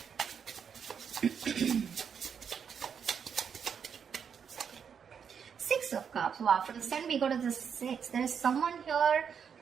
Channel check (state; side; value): quieter; left; 7.2 dB